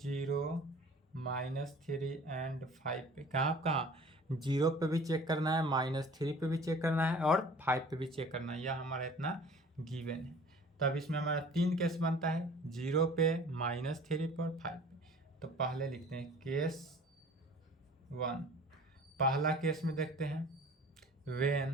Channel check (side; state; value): both; normal; correlation 0.47